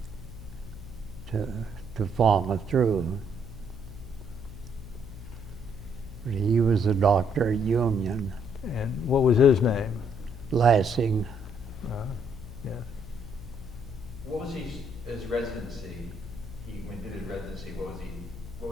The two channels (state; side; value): noise; left; hum, 13 dB below the sound